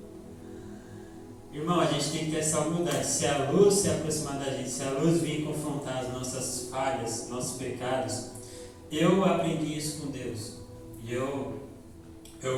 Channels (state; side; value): identical; both; correlation 1.00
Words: Irmão, a gente tem que ter essa humildade. Se a luz se aproximar da gente, se a luz vir confrontar as nossas falhas, nossos pecados, eu aprendi isso com Deus. E eu